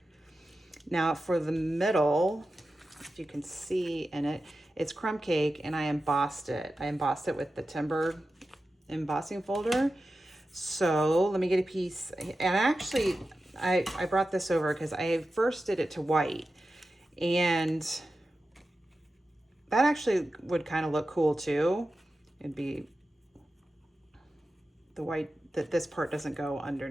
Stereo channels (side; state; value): both; normal; correlation 0.93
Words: Now for the middle, if you can see in it, it's crumb cake and I embossed it. I embossed it with the timber embossing folder. So let me get a piece, and actually I brought this over because I first did it to white, and that actually would kind of look cool too. It'd be the white, that this part doesn't go